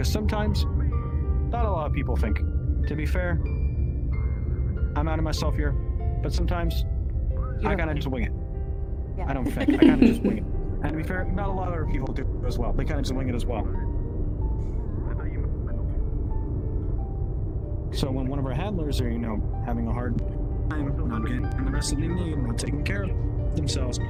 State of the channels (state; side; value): identical; both; correlation 1.00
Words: sometimes, not a lot of people think. To be fair, I'm out of myself here. But sometimes, You I don't kinda think. just wing it. Yeah. I don't think. I kinda just wing it. And to be fair, not a lot of other people do as well. They kinda just wing it as well. So when one of our handlers are, having a hard time not getting the rest of they need, not taking care of themselves,